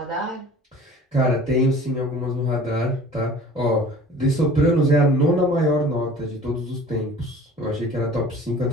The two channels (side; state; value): both; normal; correlation 0.45